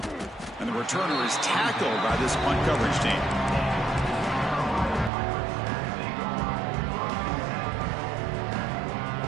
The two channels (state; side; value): drops out; left; at 5.1 s